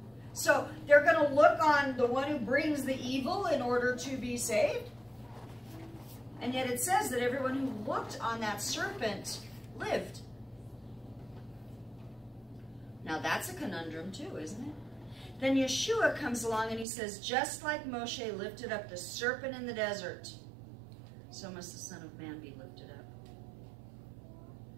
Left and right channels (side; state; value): left; drops out; at 16.9 s